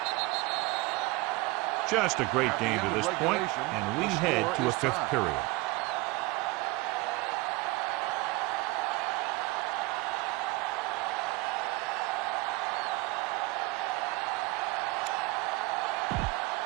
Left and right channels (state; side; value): quieter; left; 22.4 dB